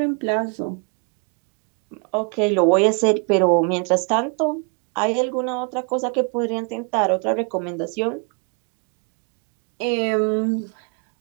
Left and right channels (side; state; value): left; quieter; 35.5 dB